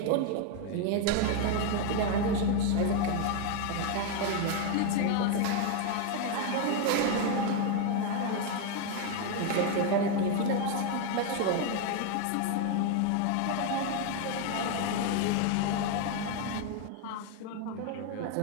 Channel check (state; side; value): different; both; correlation 0.01